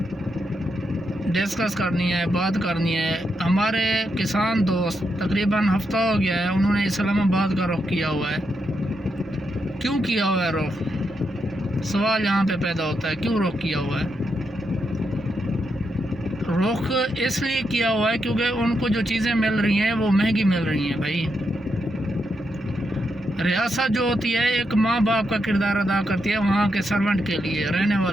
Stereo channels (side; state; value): both; normal; correlation 0.82